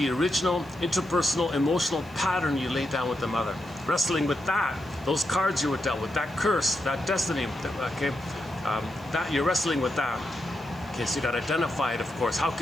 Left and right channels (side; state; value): right; noise; hiss, 26 dB below the sound